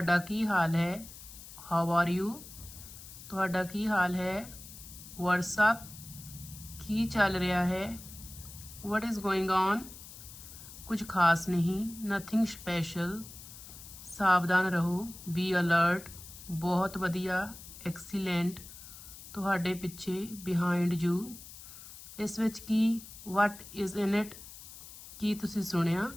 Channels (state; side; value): noise; left; hiss, 15 dB below the sound